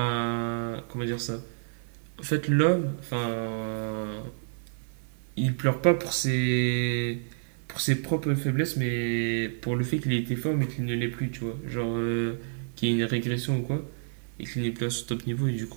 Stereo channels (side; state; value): left; silent; 59 dB below the other